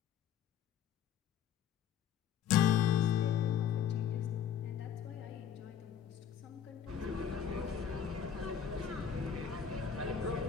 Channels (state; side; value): quieter; right; 8.5 dB